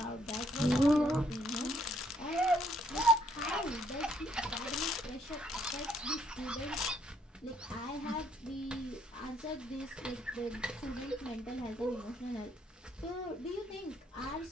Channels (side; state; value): both; normal; correlation 0.69